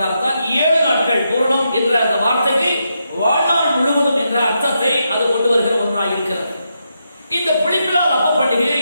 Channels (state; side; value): inverted; both; correlation -0.83